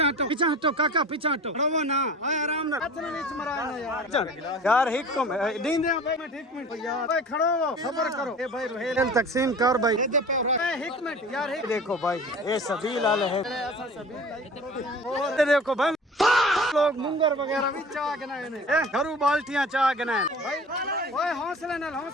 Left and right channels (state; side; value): normal; both; correlation 0.41